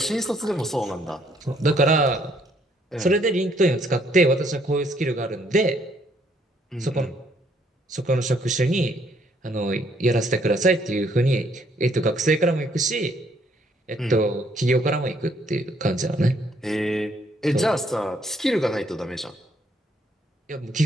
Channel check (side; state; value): both; normal; correlation 0.68